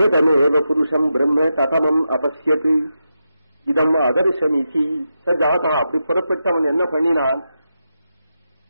புருஷம் பிரம்ம ததமம் அபஸ்யத் இதம் அதர்சமிதி. சஜாதா அப்படி புறப்பட்டவன் என்ன பண்ணினான்,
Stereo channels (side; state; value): both; inverted; correlation -0.87